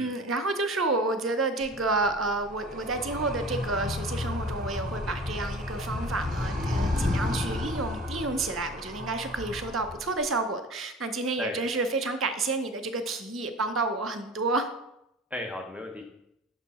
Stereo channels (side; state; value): both; normal; correlation 0.38